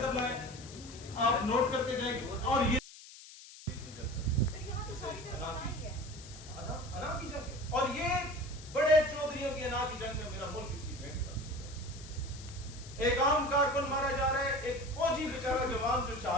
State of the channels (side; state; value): left; noise; hiss, 17 dB below the sound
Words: لائیں، آپ نوٹ کرتے جائیں گے۔ اور یہ انا کی جنگ ہے، اور یہ بڑے چودھریوں کی انا کی جنگ میں میرا ملک اس کی بھینٹ کر، ایک عام کارکن مارا جا رہا ہے، ایک فوجی بیچارہ جوان جو